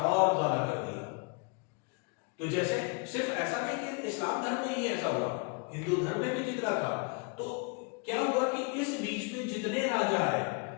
और ज्यादा कर दिया। तो जैसे सिर्फ ऐसा नहीं कि इस्लाम धर्म में ही ऐसा हुआ, हिंदू धर्म में भी जितना था। तो क्या हुआ कि इस बीच में जितने राजा आए,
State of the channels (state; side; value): quieter; right; 33.5 dB